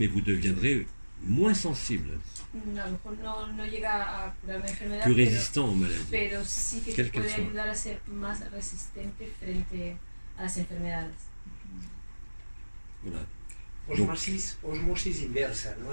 vous deviendrez moins sensible, A lo mejor no llega a curar una enfermedad, plus résistant aux maladies. pero sí que te Quelle qu'elle puede soit. ayudar a ser más resistente frente a las enfermedades. Voilà. Osmosis inversa,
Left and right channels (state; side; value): inverted; both; correlation -1.00